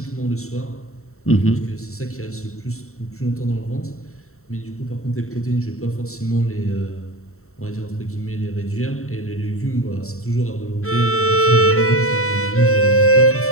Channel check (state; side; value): late; right; 0.63 ms